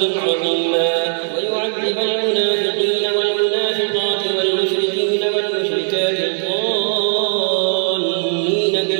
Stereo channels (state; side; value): silent; left; 67 dB below the other